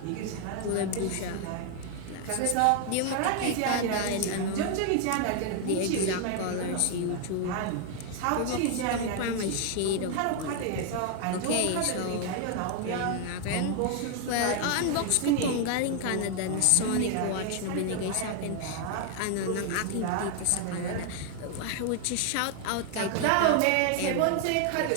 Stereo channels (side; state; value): both; different; correlation 0.00